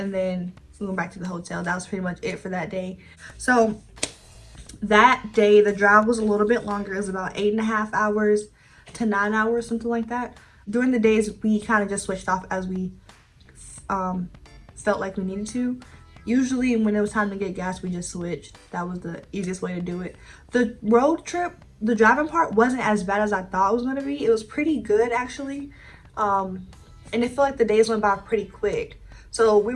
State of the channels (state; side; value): identical; both; correlation 1.00